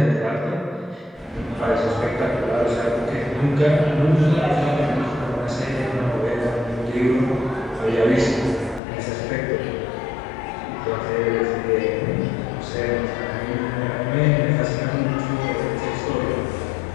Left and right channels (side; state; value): right; drops out; at 8.8 s